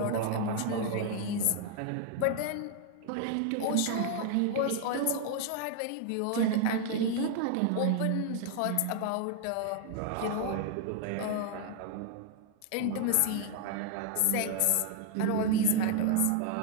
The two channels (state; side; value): different; both; correlation 0.00